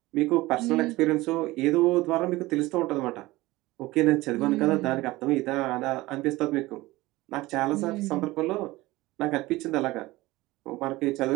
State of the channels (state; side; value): quieter; left; 19.4 dB